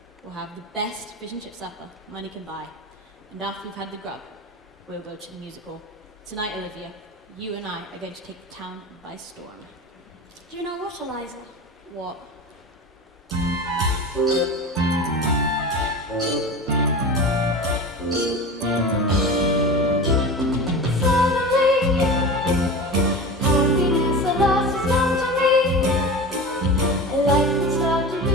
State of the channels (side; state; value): both; normal; correlation 0.30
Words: will have the best fish and chip supper money can buy. And after we've had the grub, we'll go to the musical. Tonight, Olivia, you and I are going to take the town by storm. Do you know what, Eliza? What?